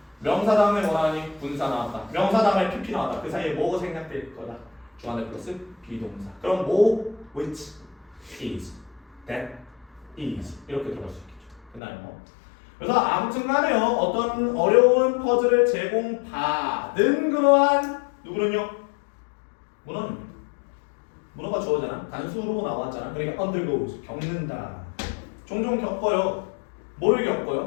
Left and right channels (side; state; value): right; drops out; at 11.8 s